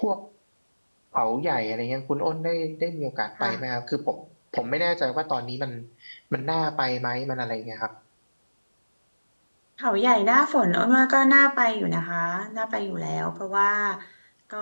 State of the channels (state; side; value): inverted; both; correlation -1.00